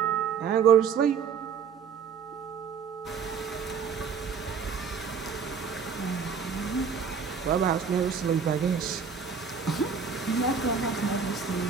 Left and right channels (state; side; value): quieter; left; 6.3 dB